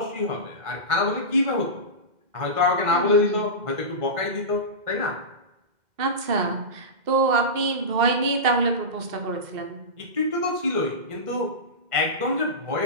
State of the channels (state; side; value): late; left; 2.1 ms